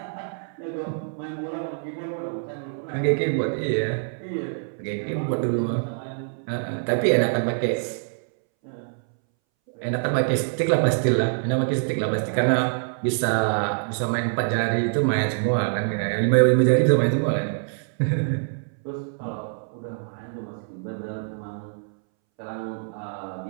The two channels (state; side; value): silent; left; 62 dB below the other